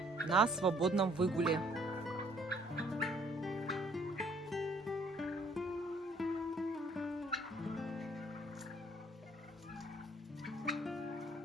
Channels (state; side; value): normal; both; correlation 0.61